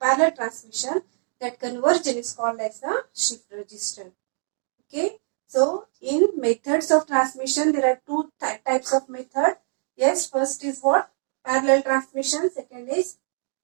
transmission, that conversion is called as the shift register. Okay. So in methods of transmission, there are two types of method. Yes, first is what? Parallel transmission.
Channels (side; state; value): left; silent; 61 dB below the other